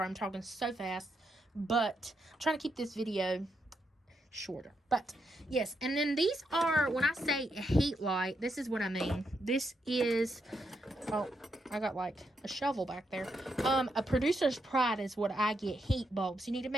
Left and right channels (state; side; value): normal; both; correlation 0.81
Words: I'm talking so fast, but I'm trying to keep this video shorter. But yes, and then these are, when I say a heat light, this is what I mean. This is, oh, I got like a shovel back there. A producer's pride is what I get, heat bulbs. You need to